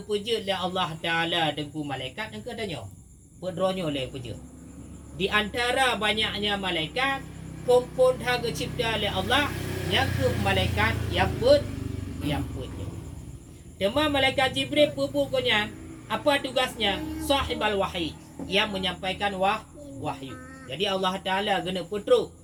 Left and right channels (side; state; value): both; identical; correlation 1.00